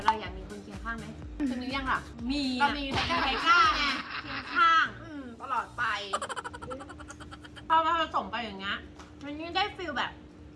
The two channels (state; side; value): identical; both; correlation 1.00